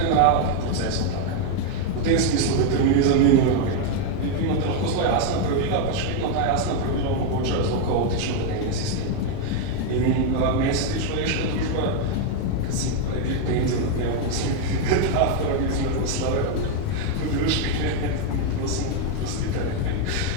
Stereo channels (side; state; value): both; different; correlation 0.01